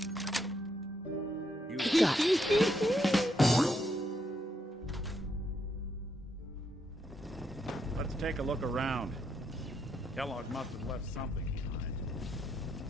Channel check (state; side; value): normal; both; correlation 0.77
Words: Got it. Let's take a look around. Kellogg must have left something behind.